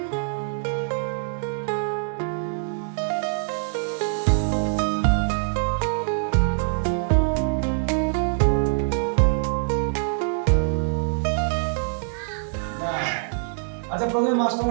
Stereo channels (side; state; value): left; silent; digital silence